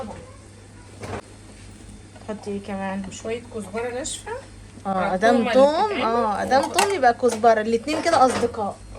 حطي ايه كمان؟ شويه كزبره ناشفه. ادام توم ادام توم يبقى كزبره. الاتنين كده اصدقاء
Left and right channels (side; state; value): both; identical; correlation 1.00